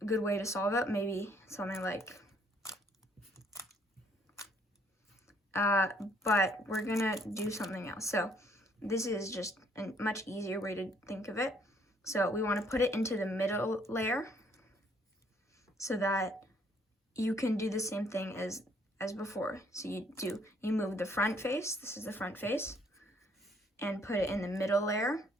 good way to solve it, maybe something like, but we're gonna do something else. So this is just a much easier way to think of it. So we want to put it into the middle layer so that you can do the same thing as before. So you move the front face, this is the front face, and put it in the middle layer.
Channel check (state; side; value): normal; both; correlation 0.65